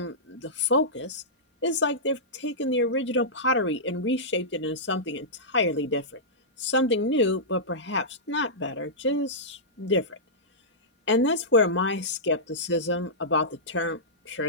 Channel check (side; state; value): both; normal; correlation -0.15